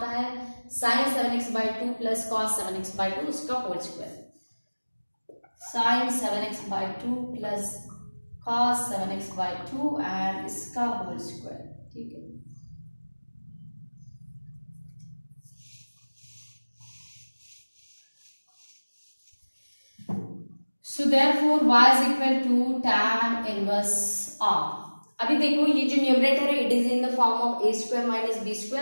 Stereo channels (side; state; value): both; inverted; correlation -1.00